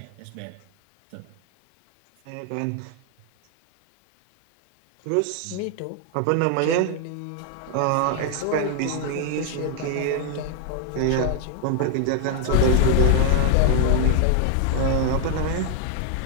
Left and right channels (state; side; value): different; both; correlation 0.00